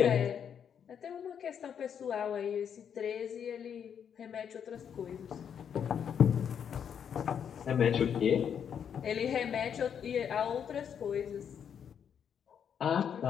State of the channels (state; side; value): quieter; right; 8.0 dB